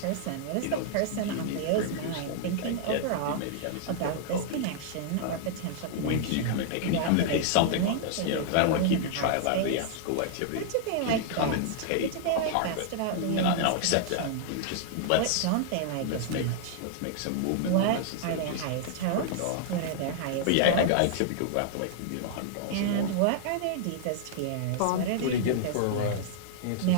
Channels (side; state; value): both; different; correlation -0.01